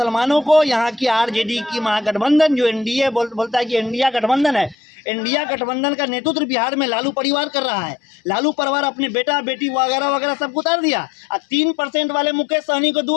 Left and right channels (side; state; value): right; drops out; at 4.8 s